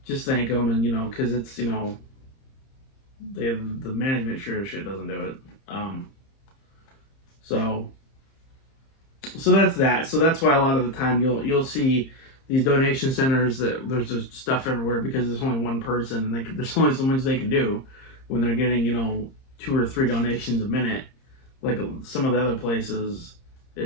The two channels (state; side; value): late; right; 30 ms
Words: just thank them, and because it's the management sure as shit doesn't do it. So that's that. So that's why a lot of the time you'll see these donation centers that there's just stuff everywhere because there's only one person, and there's only so much they can do when they're getting 2 or 3 donations a minute. Like some of the other places,